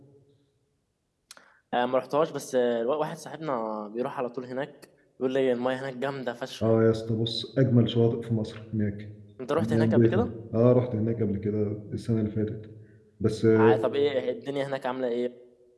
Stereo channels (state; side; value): identical; both; correlation 1.00